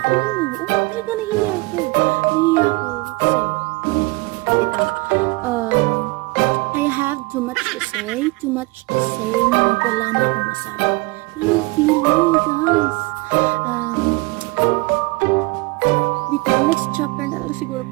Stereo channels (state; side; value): quieter; left; 24.4 dB